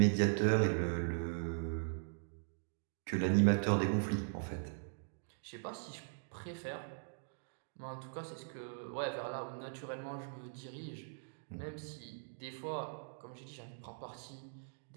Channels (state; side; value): silent; left; digital silence